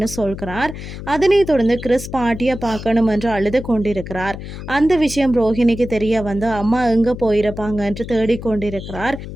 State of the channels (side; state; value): left; noise; hum, 10 dB below the sound